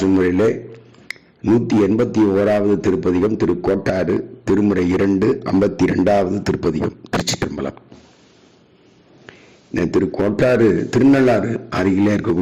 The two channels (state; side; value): identical; both; correlation 1.00